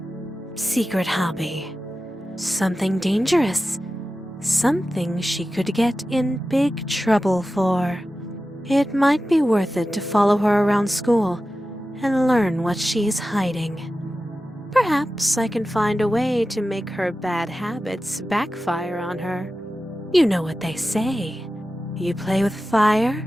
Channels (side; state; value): both; normal; correlation 0.94